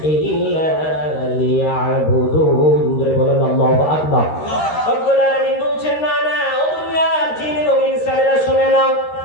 ইল্লা লিয়াবুদুন। বলেন আল্লাহু আকবার। রব্বুল আলামিন বলছেন, না না, ও দুনিয়ার জিন এবং ইনসানেরা শুনে নাও,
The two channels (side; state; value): right; late; 13 ms